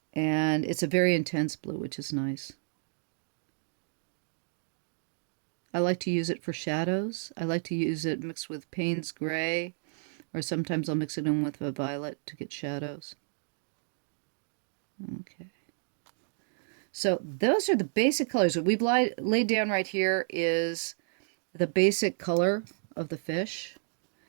And it's a very intense blue, which is nice. I like to use it for shadows. I like to use it mixed with Payne's gray, or sometimes I'll mix it in with a violet to get shadows. Okay. So those are the basic colors. What we've laid down right here is the basic color of the fish.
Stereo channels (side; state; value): left; silent; digital silence